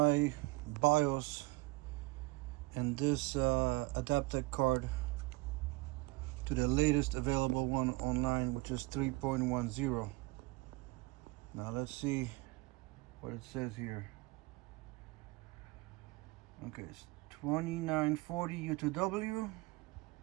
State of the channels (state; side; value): quieter; left; 23.7 dB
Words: BIOS and this Adaptec card to the latest available one online, which is 3.10. Now let's see what it says here. Okay, it's 2940U2W,